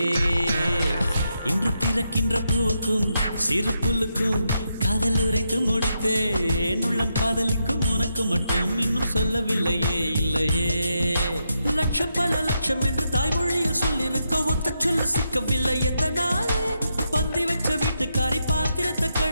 இன்று திறக்கின்ற பூவுக்கும் சிறு புல்லுக்கும் காதல் உரைத்து முடித்தேன் உள்ளம் காதலிக்கும் உனக்கு மட்டும் இன்னும் சொல்லவில்லையே இல்லையே லட்சம் பல லட்சம் என்று தாய்மொழியில் சொல்லிருக்க ஒத்த சொல்ல சிக்கவில்லை எத்தனாலே பந்தி வச்ச வீட்டுக்காரி பாத்திரத்தை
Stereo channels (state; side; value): inverted; both; correlation -0.83